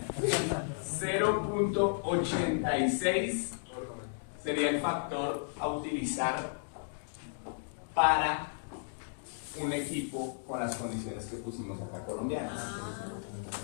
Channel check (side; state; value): right; silent; digital silence